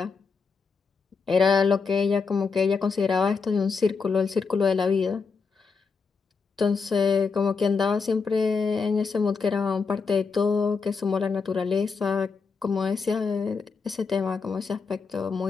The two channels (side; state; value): right; quieter; 5.0 dB